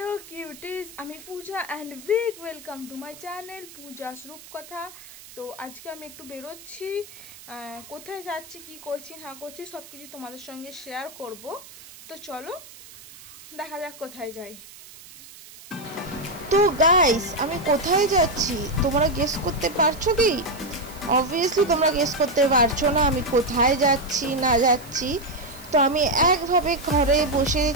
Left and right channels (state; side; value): noise; right; hiss, 19 dB below the sound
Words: cuties, আমি Puja and big welcome to my channel Puja's Rupkotha. তো আজকে আমি একটু বেরোচ্ছি, কোথায় যাচ্ছি, কি করছি না করছি সব কিছু তোমাদের সঙ্গে শেয়ার করব। তো চলো দেখা যাক কোথায় যাই। তো গাইস, আমি কোথায় যাচ্ছি তোমরা গেস করতে পারছো কি? অবভিয়াসলি তোমরা গেস করতে পারছো না আমি কোথায় যাচ্ছি না যাচ্ছি। তো আমি একভাবে ঘরে বসে